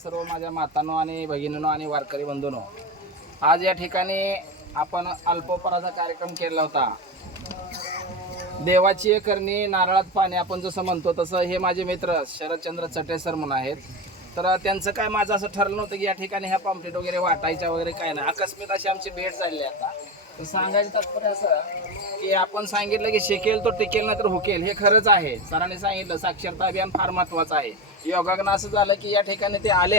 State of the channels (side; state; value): both; normal; correlation 0.21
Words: माझ्या मातांनो आणि भगिनींनो आणि वारकरी बंधूंनो, आज या ठिकाणी आपण अल्पोपहाराचा कार्यक्रम केला होता. देवाची करणी नारळात पाणी, आपण जसं म्हणतो तसं हे माझे मित्र शरदचंद्र चटे सर म्हणून आहेत. तर त्यांचं काय, माझं असं ठरलं नव्हतं की या ठिकाणी ह्या पॉम्पलेट वगैरे वाटायच्या वगैरे काय नाही. आकस्मित अशी आमची भेट झाली आता. तर सांगायचं तात्पर्य असं की आपण सांगितलं की शिकेल तो टिकेल नाही तर हुकेल, हे खरंच आहे. सरांनी सांगितलं साक्षरता अभियान फार महत्त्वाचं आहे. योगानं असं झालं की या ठिकाणी ते